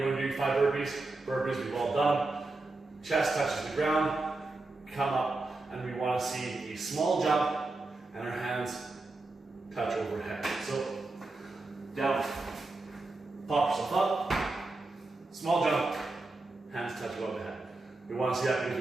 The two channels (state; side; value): quieter; left; 3.2 dB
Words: going to do 5 burpees. Burpees, we've all done. Chest touches the ground, come up, and we want to see a small jump, and our hands touch overhead. So, down, pop yourself up, small jump, hands touch above the head. We want to see that